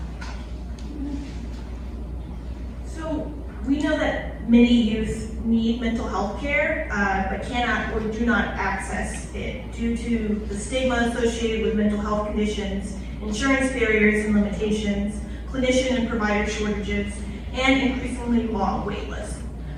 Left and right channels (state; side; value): identical; both; correlation 1.00